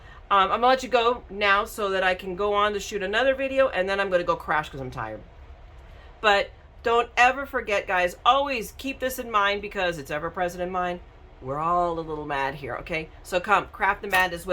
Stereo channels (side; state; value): both; identical; correlation 1.00